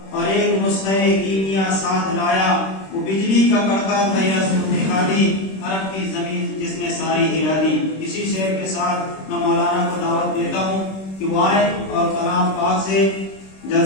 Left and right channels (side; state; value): right; late; 26 ms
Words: और एक नुस्खे कीमिया साथ लाया। वो बिजली का कड़का था या दिखा दी, अरब की जमीन जिसने सारी हिला दी। इसी शेर के साथ मैं मौलाना को दावत देता हूँ कि वो आए और कलाम पाक से